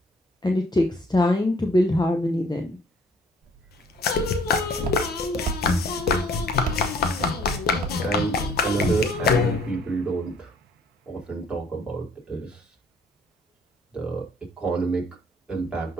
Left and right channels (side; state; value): both; normal; correlation 0.59